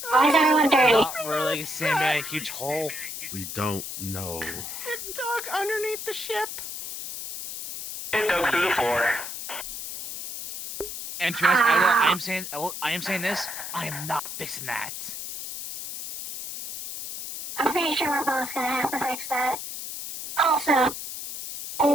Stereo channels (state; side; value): noise; left; hiss, 8 dB below the sound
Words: Why is everyone dirty? Not really. Sand in a huge hole. We don't know. It dug underneath the ship. It dug through the floor. And to be honest, I am saying this. I am not fixing that. I'm pretty sure we're both gonna have to fix that. Also,